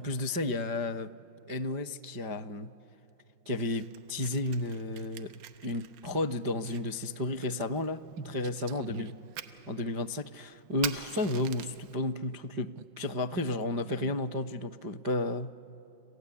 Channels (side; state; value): left; late; 5.6 ms